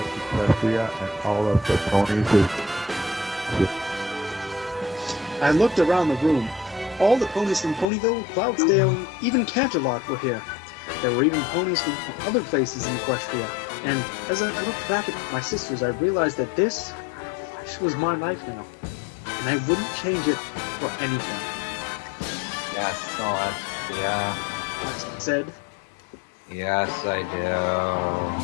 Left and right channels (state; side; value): drops out; right; at 7.9 s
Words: Equestria and all of the ponies? I looked around the room. All the ponies from Ponyville, Cloudsdale, and even Canterlot were here. There were even ponies from other places in Equestria. And as I looked back at my sisters, I realized that this was my life now. And I wouldn't change it for anything. Yes, Celestia. I said. Yes, I